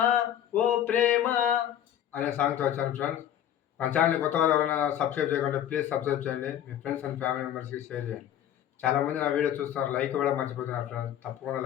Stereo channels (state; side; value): quieter; right; 10.8 dB